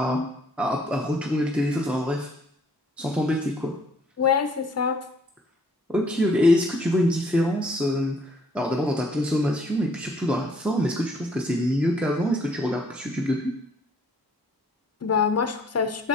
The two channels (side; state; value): both; normal; correlation 0.63